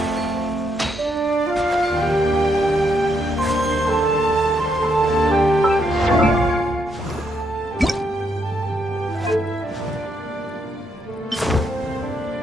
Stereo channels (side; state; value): both; normal; correlation 0.76